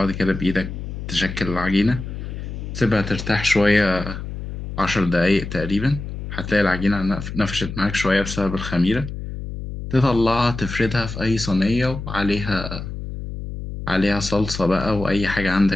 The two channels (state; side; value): noise; left; hum, 8 dB below the sound